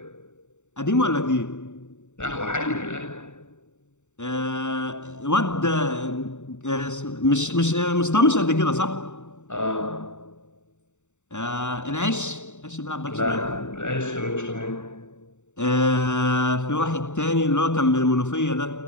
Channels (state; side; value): late; right; 0.84 ms